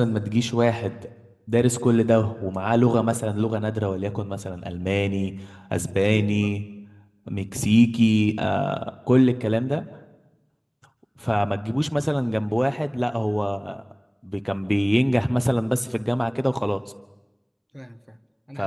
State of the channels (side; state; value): both; identical; correlation 1.00